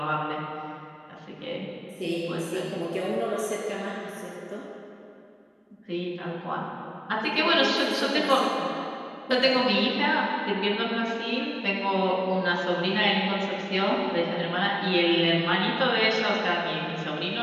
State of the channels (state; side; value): identical; both; correlation 1.00